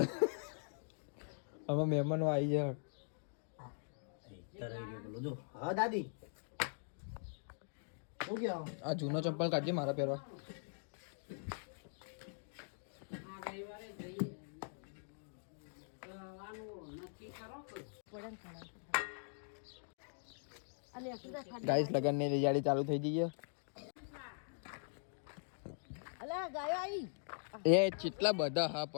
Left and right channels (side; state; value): right; silent; digital silence